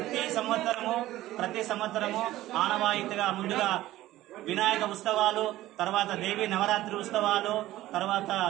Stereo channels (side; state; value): left; quieter; 15.5 dB